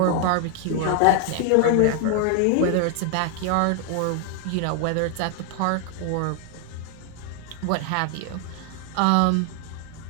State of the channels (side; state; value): both; different; correlation 0.00